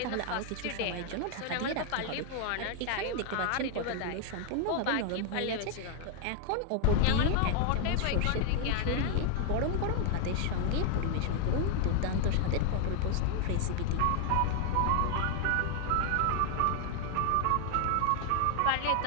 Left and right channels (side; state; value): both; different; correlation 0.00